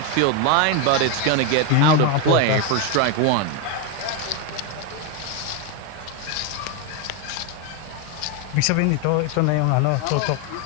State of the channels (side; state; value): both; different; correlation 0.02